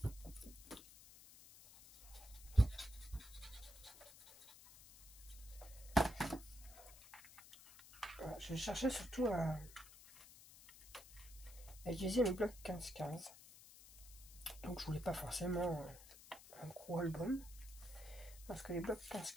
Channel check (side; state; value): left; noise; hiss, 18 dB below the sound